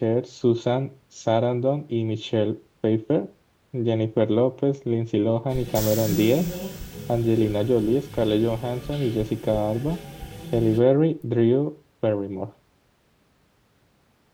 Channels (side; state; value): both; identical; correlation 1.00